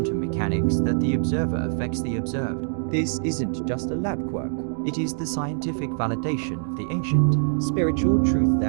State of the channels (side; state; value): left; silent; digital silence